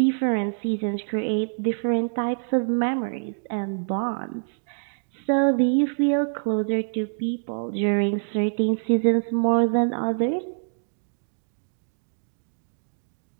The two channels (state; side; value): silent; left; digital silence